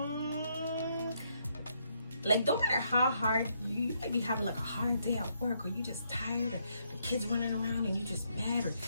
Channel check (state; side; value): inverted; both; correlation -0.75